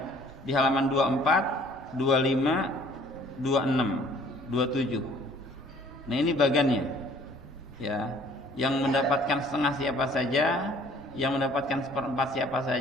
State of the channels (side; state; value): both; normal; correlation 0.56